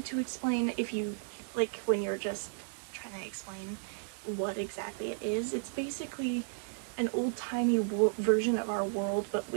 to explain if you, like, when you're just trying to explain what exactly it is. It's basically an old-timey version of our world, but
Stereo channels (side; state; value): left; silent; digital silence